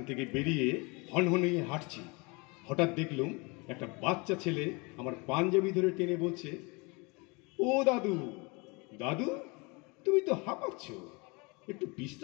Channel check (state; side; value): quieter; right; 28.4 dB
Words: থেকে বেরিয়ে হনহনিয়ে হাঁটছি, হঠাৎ দেখলুম একটা বাচ্চা ছেলে আমার পাঞ্জাবি ধরে টেনে বলছে, ও দাদু, দাদু তুমি তো হাঁপাচ্ছ, একটু